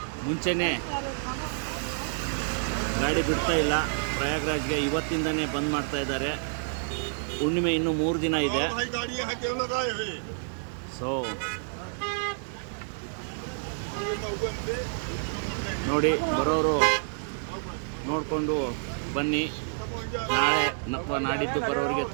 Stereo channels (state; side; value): silent; left; digital silence